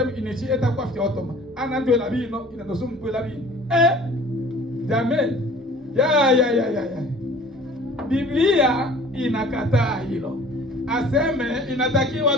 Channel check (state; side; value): normal; both; correlation 0.48